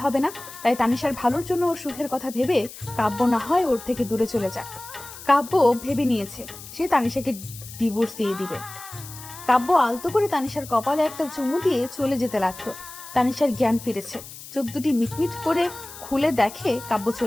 হবে না। তাই তানিশার ভালোর জন্য ওর সুখের কথা ভেবে কাব্য না হয় ওর থেকে দূরে চলে যাক। কাব্য ভেবে নিয়েছে সে তানিশাকে ডিভোর্স দিয়ে দিবে। কাব্য আলতো করে তানিশার কপালে একটা চুমু দিয়ে চলে যেতে লাগলো। তানিশার জ্ঞান ফিরেছে, চোখ দুটি মিটমিট করে খুলে দেখে কাব্য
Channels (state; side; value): noise; left; hiss, 15 dB below the sound